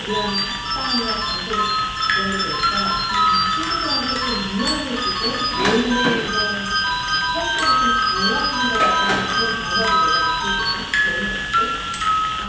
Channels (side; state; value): both; identical; correlation 1.00